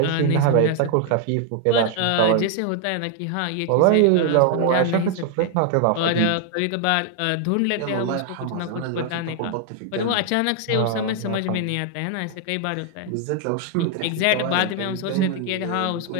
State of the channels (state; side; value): different; both; correlation 0.00